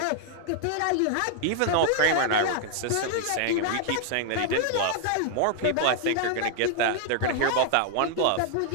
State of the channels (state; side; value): different; both; correlation 0.00